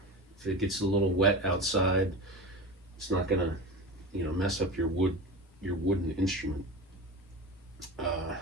if it gets a little wet outside, it's not gonna, you know, mess up your wooden instrument.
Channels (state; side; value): normal; both; correlation 0.28